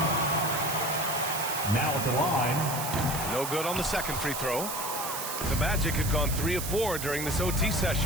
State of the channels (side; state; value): right; noise; hiss, 5 dB below the sound